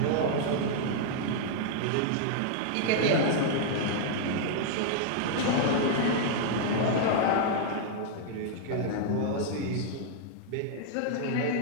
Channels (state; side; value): different; both; correlation -0.01